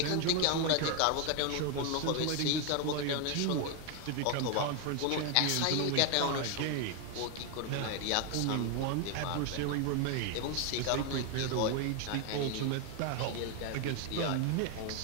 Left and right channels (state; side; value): different; both; correlation 0.01